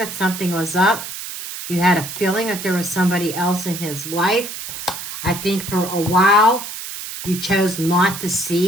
something was up. You had a feeling that there was somebody else in his life. I think for a while you chose not to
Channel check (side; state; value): right; noise; hiss, 8 dB below the sound